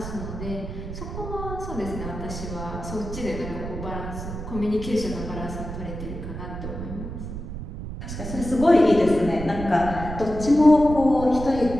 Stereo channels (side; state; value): right; noise; rumble, 8 dB below the sound